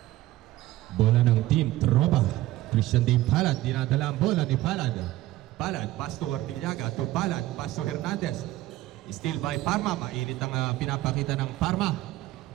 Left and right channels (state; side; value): quieter; left; 16.3 dB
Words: Bola ng team Tropa. Christian Dave Palad, dinadala ang bola ni Palad. Palad, pass to Ortillaga, to Palad, pass to Hernandez. Still by Parma, mainit ang pinapakita ng Parma.